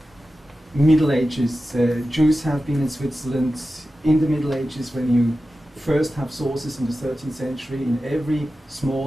Middle Ages. Jews have been in Switzerland in the Middle Ages. When you first have sources in the 13th century, in every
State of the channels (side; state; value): both; normal; correlation 0.93